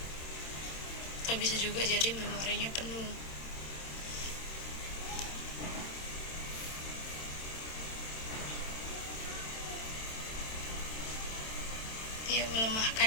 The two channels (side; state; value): right; late; 27 ms